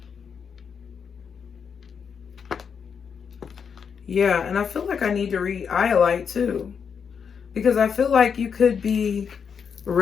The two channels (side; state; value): right; quieter; 6.7 dB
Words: Yeah, and I feel like I need to read Iolite too, because I feel like you could be